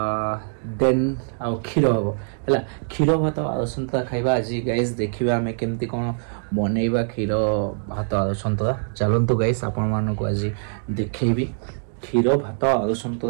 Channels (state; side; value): silent; left; digital silence